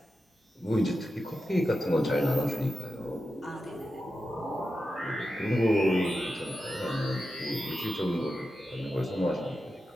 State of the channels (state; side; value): normal; both; correlation 0.90